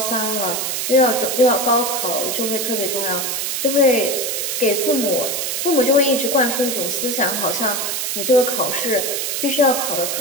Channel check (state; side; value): noise; right; hiss, 1 dB below the sound